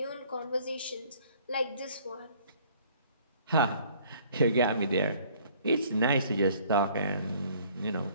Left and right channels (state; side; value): inverted; both; correlation -0.57